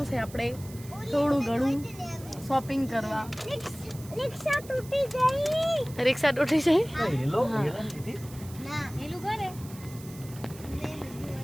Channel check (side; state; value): right; noise; hiss, 18 dB below the sound